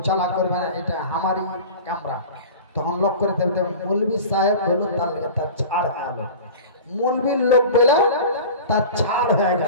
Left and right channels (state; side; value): inverted; both; correlation -0.36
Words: চালা করবে না, এটা আমারই ক্যামেরা, তখন লক করে দেবে। মৌলভী সাহেব বলল তার ছাড় হয়ে গেল, মৌলভীর লোক বলে তার ছাড় হয়ে